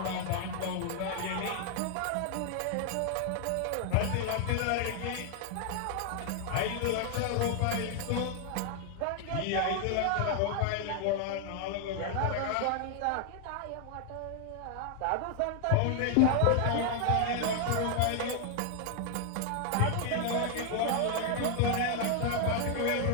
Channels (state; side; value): different; both; correlation 0.00